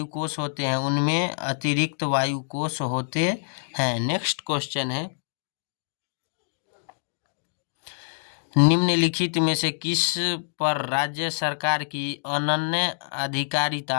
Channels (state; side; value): silent; right; digital silence